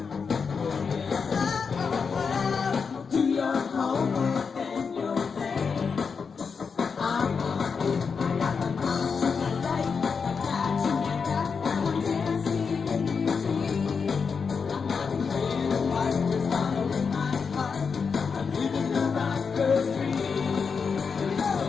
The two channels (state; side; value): quieter; right; 5.6 dB